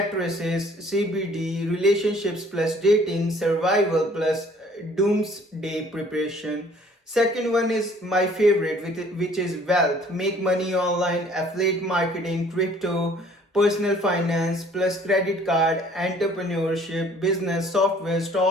CBD, relationships plus dating, survival plus doomsday preparation. Second one is my favorite, which is wealth, make money online, affiliate marketing, crypto, personal finance plus credit card, entrepreneurship, business, software,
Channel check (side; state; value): both; normal; correlation 0.56